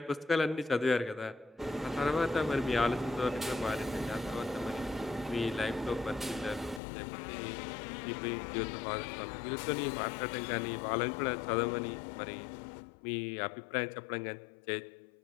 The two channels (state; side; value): drops out; right; at 6.8 s